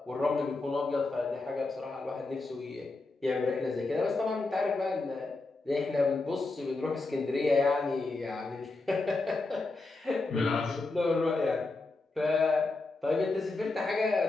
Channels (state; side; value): quieter; right; 3.4 dB